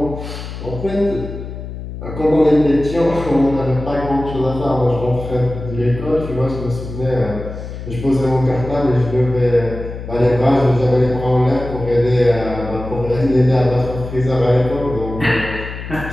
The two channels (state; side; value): noise; left; hum, 9 dB below the sound